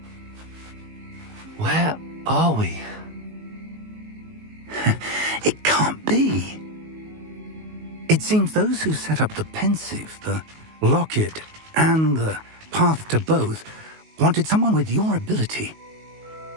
Where are we? It can't be. It seems those who set up the Pensieve, the Locket, and the Path to Both wanted someone with your ability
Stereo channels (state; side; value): late; left; 19 ms